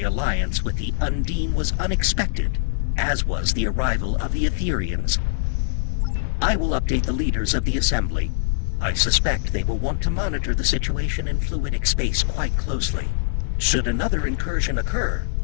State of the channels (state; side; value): silent; right; 57 dB below the other